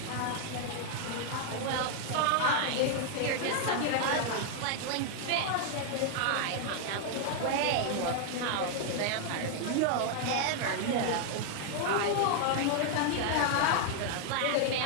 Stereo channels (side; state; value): both; different; correlation 0.00